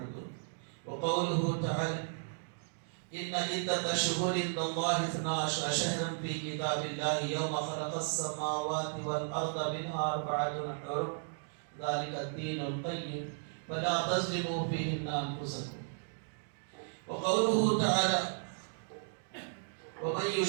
وقوله تعالى إن عدة الشهور عند الله 12 شهرا في كتاب الله يوم خلق السماوات والأرض منها 4 حرم ذلك الدين القيم فلا تظلموا فيهن أنفسكم وقوله تعالى ومن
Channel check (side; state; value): left; silent; digital silence